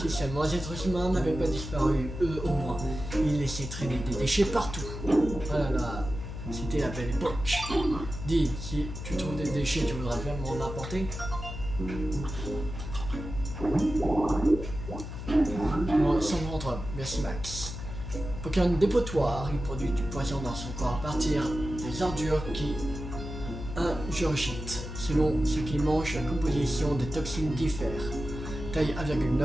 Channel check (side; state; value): left; noise; hum, 8 dB below the sound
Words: seulement les êtres humains n'avaient pas disparu, eux au moins, ils laissaient traîner des déchets partout. Ah là là, c'était la belle époque. Dis, si tu trouves des déchets, tu voudrais bien m'en apporter? Bon, sans rentre, merci Max. Pokémon dépotoir, il produit du poison dans son corps à partir des ordures qui ingurgite. Selon ce qu'il mange, la composition des toxines diffère. Taille